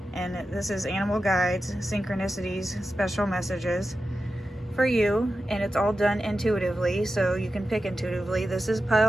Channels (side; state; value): both; normal; correlation 0.92